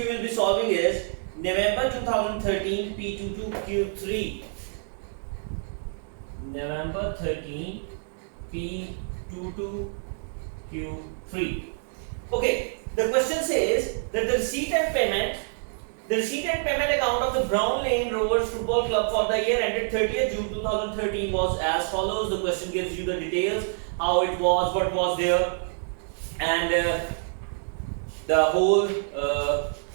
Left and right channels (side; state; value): left; silent; 60 dB below the other